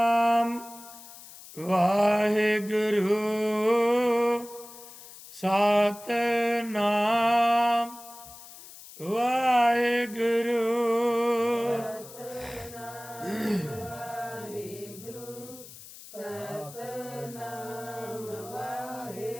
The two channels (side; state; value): left; noise; hiss, 17 dB below the sound